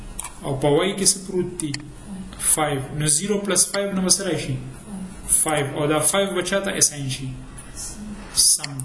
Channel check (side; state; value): both; identical; correlation 1.00